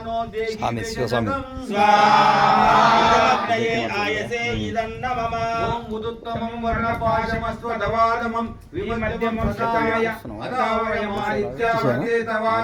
స్వామి శివస్వామి ఆయసే ఇదన్న మమ ఓం ఉదుత్తమం వర్ణపాశమస్వదవాదమం విమధ్యమం సతాయ అతావయమాదిత్యవర్తే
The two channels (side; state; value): both; identical; correlation 1.00